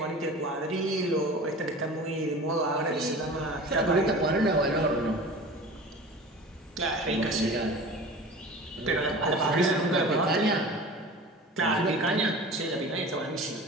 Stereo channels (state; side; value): normal; both; correlation 0.37